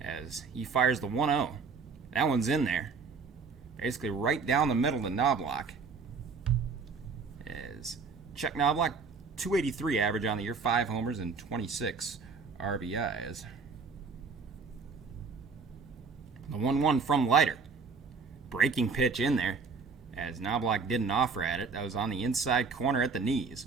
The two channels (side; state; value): left; quieter; 5.0 dB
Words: as he fires the 1-0. That one's in there, basically right down the middle to Knobloch. As Chuck Knobloch, 283 average on the year, 5 homers and 26 RBIs. The 1-1 from Leiter. Breaking pitch in there, as Knobloch didn't offer at it. That was on the inside corner at the knees.